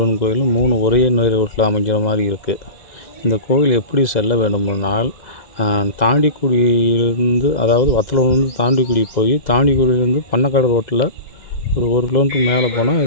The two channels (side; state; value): right; late; 2.0 ms